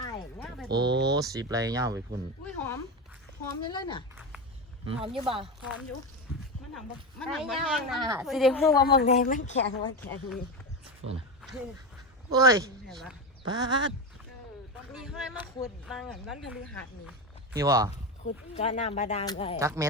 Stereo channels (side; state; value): both; normal; correlation 0.18